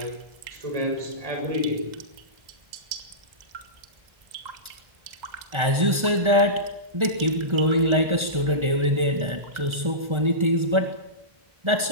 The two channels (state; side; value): late; left; 1.4 ms